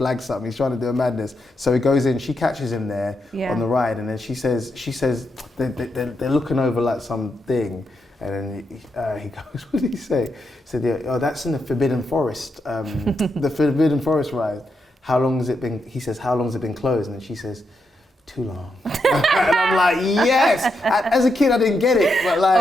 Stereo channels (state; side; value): normal; both; correlation 0.83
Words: something. He's trying to do a madness. So he goes in. She catches him there on the ride, and then she says they're looking over like something. And then he goes, what did he say? He said, oh, that's in the Forbidden Forest, the Forbidden Forest ride. How long has it been? He says, how long has it been closed? And then she says, too long. And I'm like, yes. As a kid, I didn't get it, but